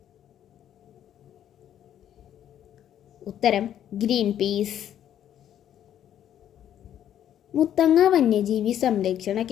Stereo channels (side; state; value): right; quieter; 10.6 dB